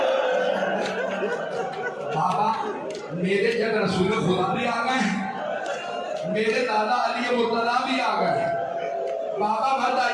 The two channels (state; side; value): identical; both; correlation 1.00